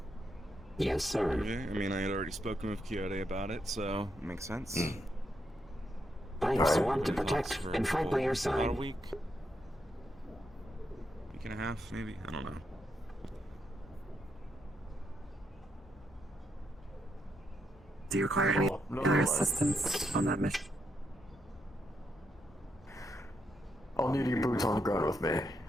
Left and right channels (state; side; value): normal; both; correlation 0.80